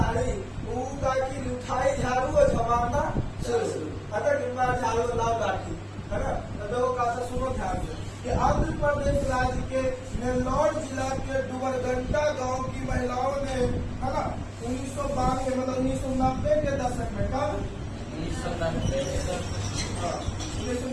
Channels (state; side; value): identical; both; correlation 1.00